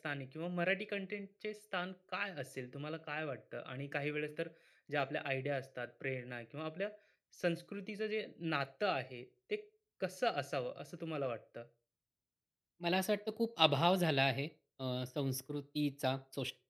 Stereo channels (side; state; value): both; identical; correlation 1.00